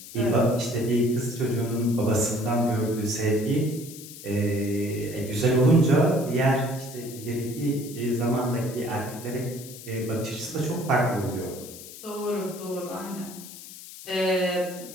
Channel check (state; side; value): noise; left; hiss, 15 dB below the sound